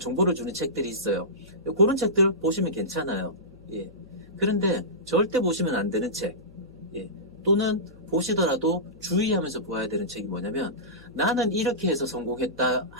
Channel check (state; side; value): noise; left; hum, 23 dB below the sound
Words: 주는 책들이 있어요. 그런 책들 보시면 괜찮아요. 예. 그런데 절대 보시면 안 되는 책, 또는 보시더라도 주의하면서 보아야 되는 책이 뭐냐면, 나는 이렇게 해서 성공했다